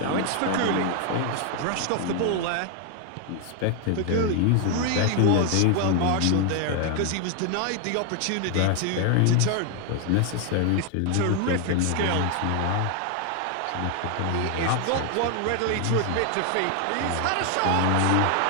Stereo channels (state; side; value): different; both; correlation 0.00